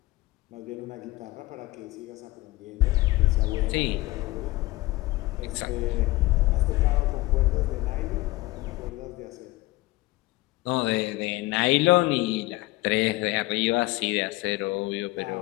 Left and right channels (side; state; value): right; quieter; 19.6 dB